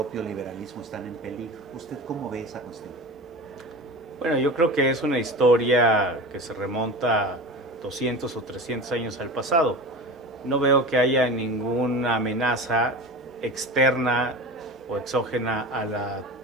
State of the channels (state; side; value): normal; both; correlation 0.32